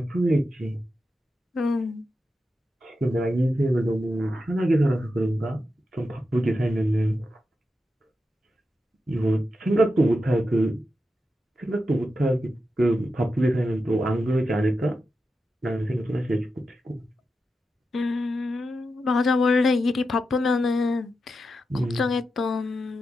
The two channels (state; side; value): normal; both; correlation 0.89